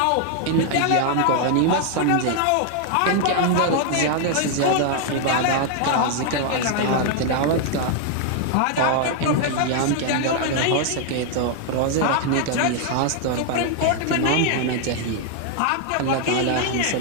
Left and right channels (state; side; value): different; both; correlation 0.00